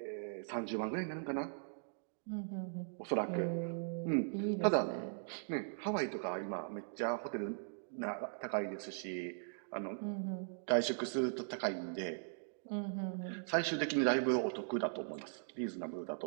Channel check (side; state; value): left; silent; digital silence